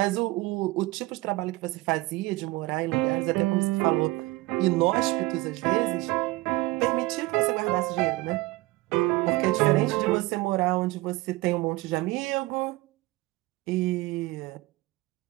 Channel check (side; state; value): left; quieter; 20.5 dB